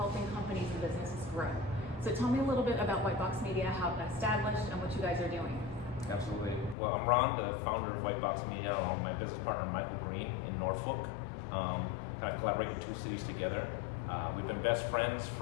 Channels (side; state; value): right; drops out; at 6.8 s